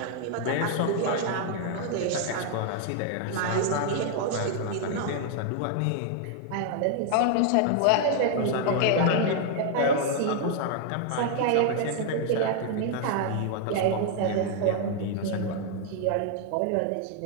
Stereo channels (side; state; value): both; different; correlation 0.00